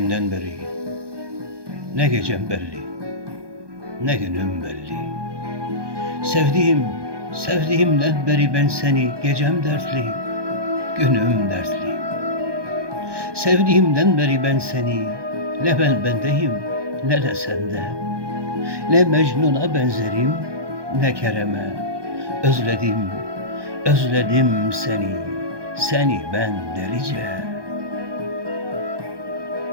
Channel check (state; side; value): late; left; 1.2 ms